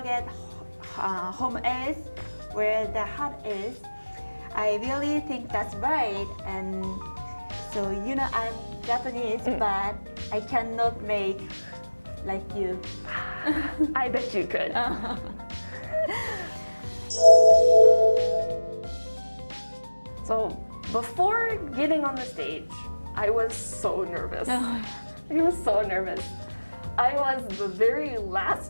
home is where the heart is. I really think that's right. And so, you know, I'm Japanese, but I cannot make like you. I bet you could. So before getting on the stage, I was so nervous. I was so nervous. I was the very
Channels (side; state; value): both; inverted; correlation -1.00